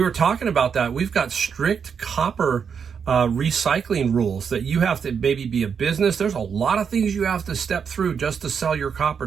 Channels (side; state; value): left; quieter; 6.7 dB